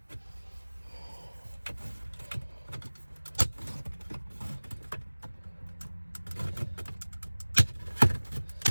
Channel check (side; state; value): both; inverted; correlation -1.00